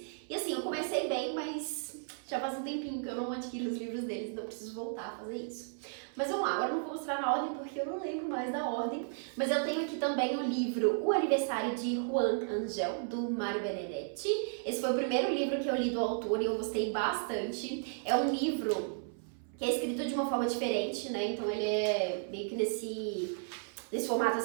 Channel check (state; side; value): silent; left; 55 dB below the other